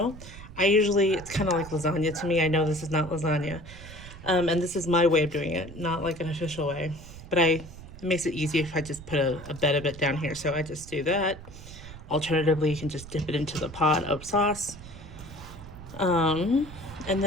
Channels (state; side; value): noise; right; rumble, 15 dB below the sound